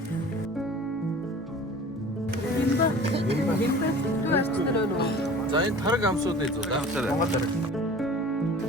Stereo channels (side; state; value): both; normal; correlation 0.43